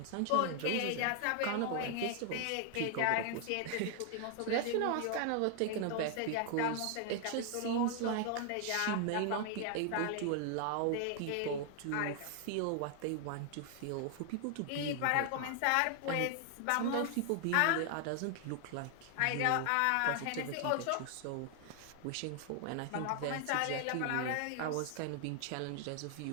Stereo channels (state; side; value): different; both; correlation 0.00